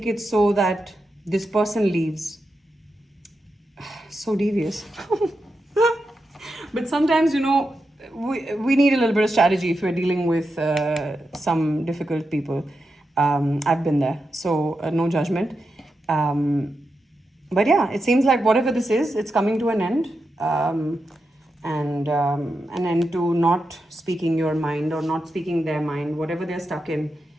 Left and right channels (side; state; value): both; normal; correlation 0.88